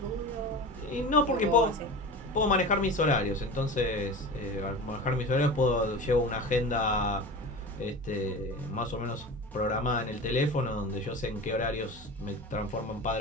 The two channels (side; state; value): both; normal; correlation 0.32